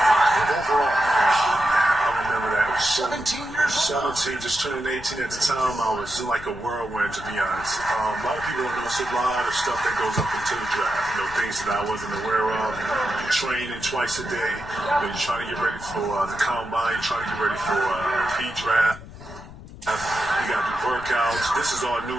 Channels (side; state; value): left; noise; rumble, 16 dB below the sound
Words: overall? I remember that. 17 years old? 17, just turning 18 at the time. I was in like a whirlwind, to be honest. A lot of people don't know it's a lot of stuff that goes up into the draft. Things that I wasn't aware of. You're training twice a day. You're trying to get ready for the combine. You're trying to get ready for pre-draft. You got to do workouts. This is all new